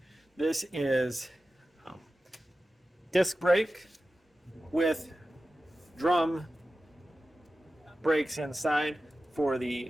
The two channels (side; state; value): both; normal; correlation 0.94